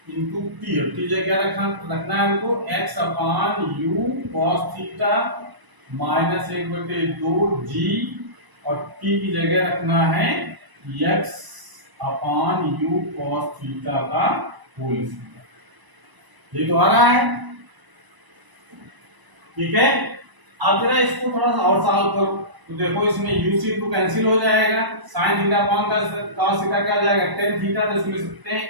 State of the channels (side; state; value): left; late; 1.0 ms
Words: into t, t जगह क्या रखना है हमको x upon u cos theta minus 1/2 g, और t की जगह रखना है x upon u cos theta का होल स्क्वायर। ये तो आ रहा है, ठीक है। अब जरा इसको थोड़ा सा और सॉल्व करो तो देखो इसमें u से टू कैंसिल हो जाएगा, sin theta upon cos theta क्या हो जाएगा tan थीटा, तो इसमें लिख सकते हैं